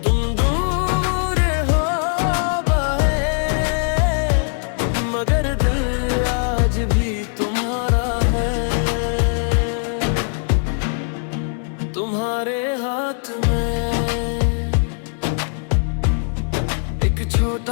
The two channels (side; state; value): right; silent; 61 dB below the other